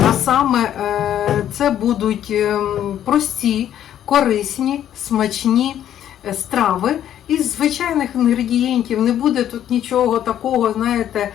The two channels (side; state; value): right; quieter; 10.8 dB